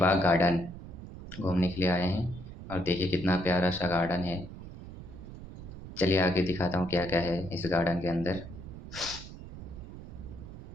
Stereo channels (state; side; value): noise; right; rumble, 13 dB below the sound